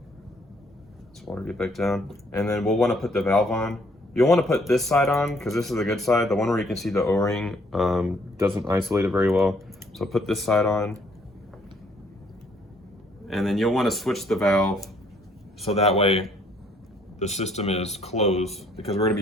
Water get back down, and then we'll want to put the valve on. You'll want to put this side on because this is the good side. The one where you can see the O-ring doesn't isolate it very well. So put this side on, and then you'll want to switch the valve so that way the system is closed, because we're going to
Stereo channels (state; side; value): normal; both; correlation 0.65